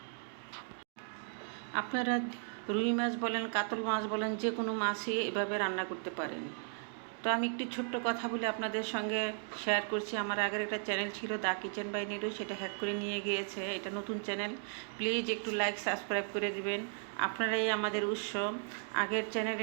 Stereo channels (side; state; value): left; silent; 54 dB below the other